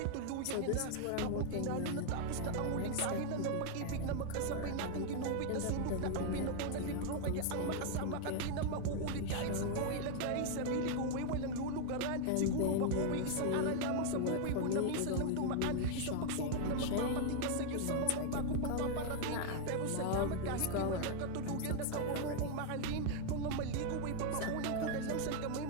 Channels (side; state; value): both; different; correlation 0.00